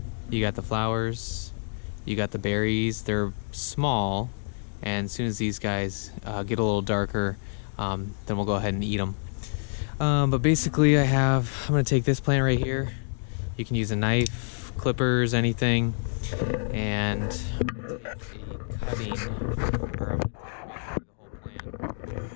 You got the flowers, you got the berries, they're small. And as soon as these guys get a little darker, then we'll go ahead and eat them. But basically I'm going to take this plant right here. You can use a knife, clippers, anything. And I'm going to take a cutting, or I'm going to take the whole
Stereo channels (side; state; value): right; silent; digital silence